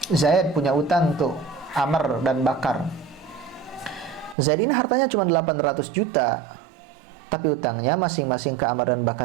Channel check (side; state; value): left; drops out; at 4.4 s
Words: Zaid punya utang tuh Amr dan Bakar. Zaid ini hartanya cuma 800 juta, tapi utangnya masing-masing ke Amr dan